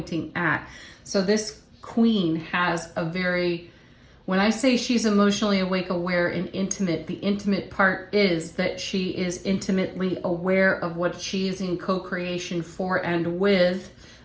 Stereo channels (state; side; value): identical; both; correlation 1.00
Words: at. So this queen has a very, when I say she's emotionally awake, aware, and intimate, the intimate part is that she is intimately aware of what she is in co-creation for and with